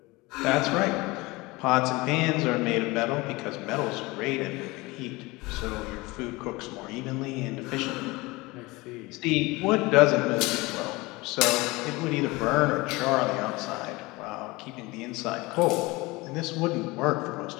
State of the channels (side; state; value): right; quieter; 22.6 dB